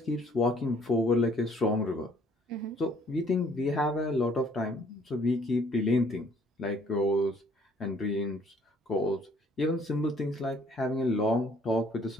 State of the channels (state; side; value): normal; both; correlation 0.61